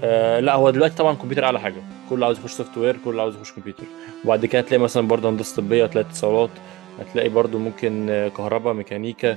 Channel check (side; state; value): left; quieter; 21.3 dB